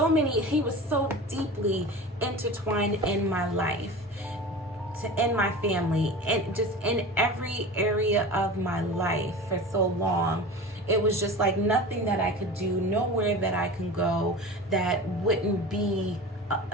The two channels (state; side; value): normal; both; correlation 0.33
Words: many, he was so deeply intertwined in my life, in my family, and just in every area of my life for so long. It was just like nothing that I could do, nowhere that I can go that wouldn't be